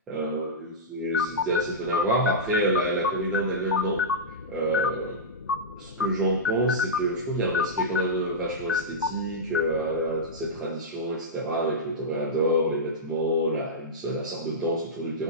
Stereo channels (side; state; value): both; normal; correlation -0.11